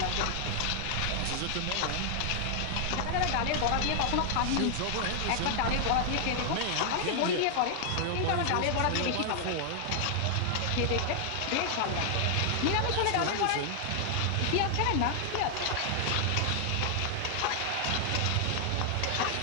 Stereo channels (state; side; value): different; both; correlation 0.00